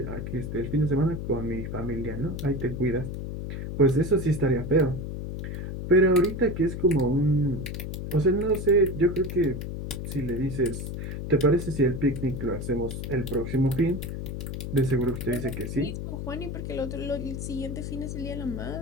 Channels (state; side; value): noise; left; hum, 6 dB below the sound